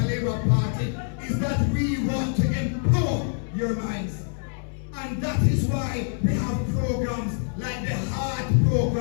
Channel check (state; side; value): silent; right; digital silence